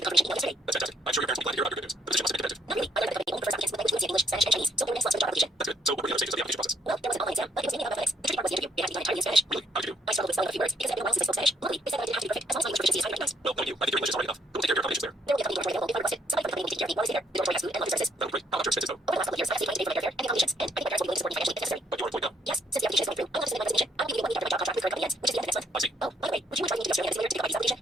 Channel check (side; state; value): both; normal; correlation 0.70